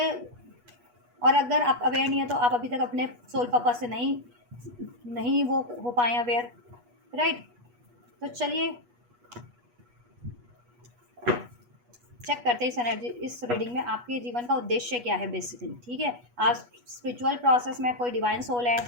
और अगर आप अवेयर नहीं है तो आप अभी तक अपने सोल पर्पस से नहीं वो हो पाए अवेयर, राइट। तो चलिए चेक करते हैं इस एनर्जी, इस रीडिंग में आपके जीवन का उद्देश्य क्या है बेसिकली। ठीक है, आप स्पिरिचुअल प्रोसेस में कोई डिवाइन सोल है,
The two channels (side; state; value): left; late; 8.3 ms